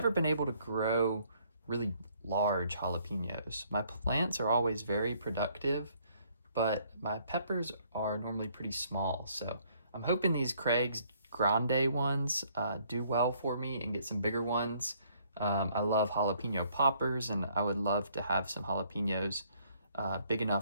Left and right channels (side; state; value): both; inverted; correlation -0.65